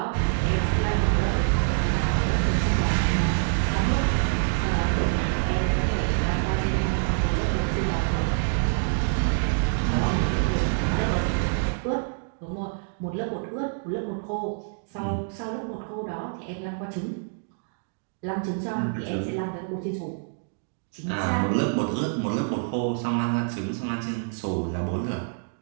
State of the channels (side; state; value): left; silent; digital silence